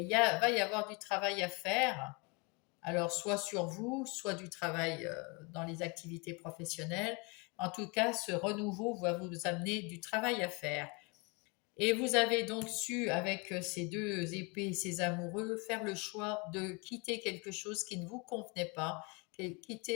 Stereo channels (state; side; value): quieter; right; 30.0 dB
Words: va y avoir du travail à faire, alors soit sur vous, soit du travail dans les activités professionnelles. En tout cas, ce renouveau va vous amener du travail à faire. Et vous avez donc su, avec ces deux épées, ces amoureux, faire le choix de quitter quelque chose qui ne vous convenait pas,